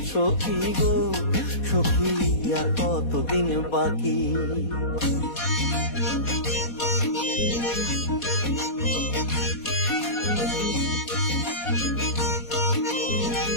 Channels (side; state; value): right; late; 4.2 ms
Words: সখী গো সখী, আর কতদিন বাকি।